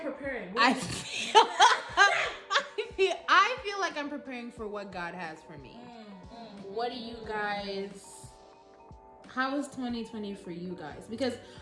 I feel like I'm preparing for what God has for me. What do you guys... How was 2020 for you guys? Because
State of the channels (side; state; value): both; identical; correlation 1.00